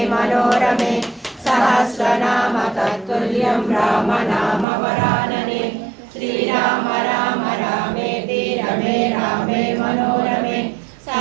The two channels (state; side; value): drops out; left; at 4.7 s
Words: మనోరమే సహస్రనామ తత్తుల్యం రామ నామ వరాననే శ్రీరామ రామ రామేతి రమే రామే మనోరమే